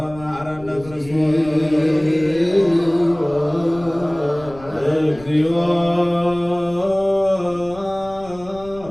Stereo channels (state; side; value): noise; left; rumble, 19 dB below the sound